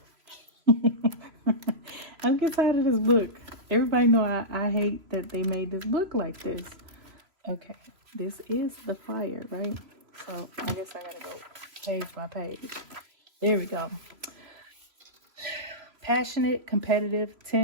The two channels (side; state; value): left; late; 3.0 ms